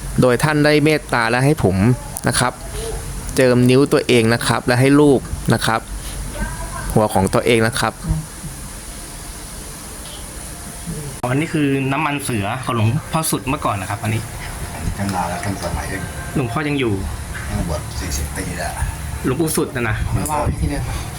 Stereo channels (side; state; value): both; identical; correlation 1.00